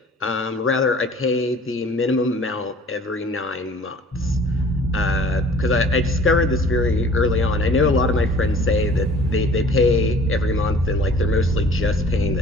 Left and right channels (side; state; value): both; normal; correlation 0.50